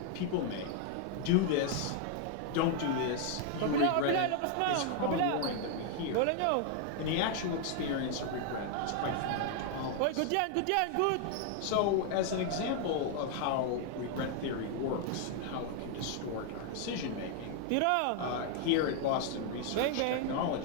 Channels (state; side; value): different; both; correlation 0.00